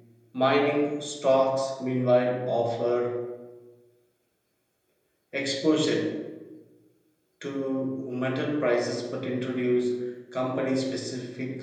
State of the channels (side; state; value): both; identical; correlation 1.00